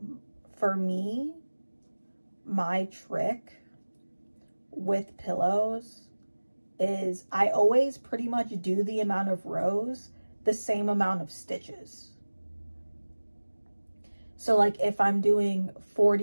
me, my trick with pillows is I always pretty much do the amount of rows the same amount of stitches. So like if I'm doing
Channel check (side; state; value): both; inverted; correlation -1.00